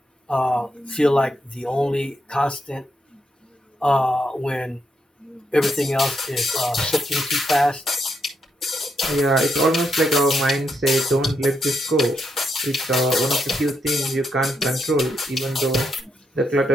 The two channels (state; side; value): normal; both; correlation 0.80